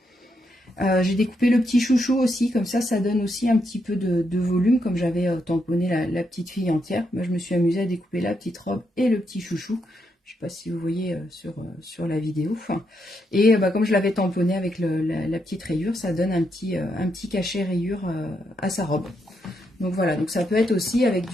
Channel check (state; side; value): normal; both; correlation 0.80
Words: J'ai découpé le petit chouchou aussi, comme ça donne aussi un petit peu de volume. Comme j'avais tamponné la petite fille entière, moi, je me suis amusée à découper la petite robe et le petit chouchou. Je ne sais pas si vous voyez sur la vidéo. Et comme je l'avais tamponné avec la petite rayure, ça donne un petit cachet rayure à sa robe. Donc voilà, donc ça peut être aussi avec